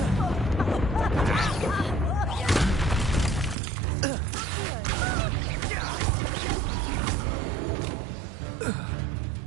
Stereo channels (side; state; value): left; drops out; at 3.6 s